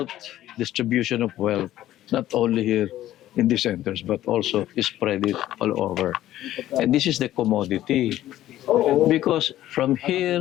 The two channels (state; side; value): quieter; right; 13.6 dB